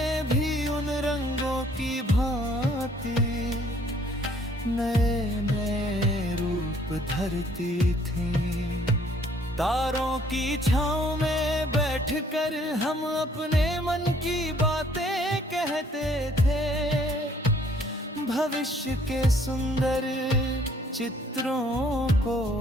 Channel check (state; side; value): normal; both; correlation 0.61